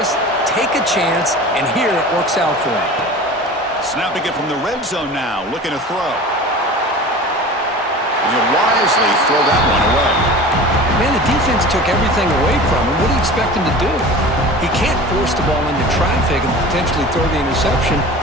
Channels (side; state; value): both; normal; correlation 0.37